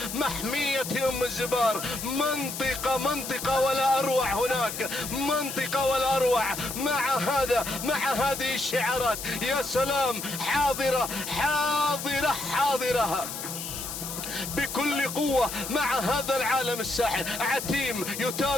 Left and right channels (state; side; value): noise; left; hiss, 7 dB below the sound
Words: محمية ام الزبار، منطقة ولا اروع، هناك منطقة ولا اروع مع هذه الشعارات. يا سلام، حاضرة بكل قوة مع هذا العالم الساحر. عتيم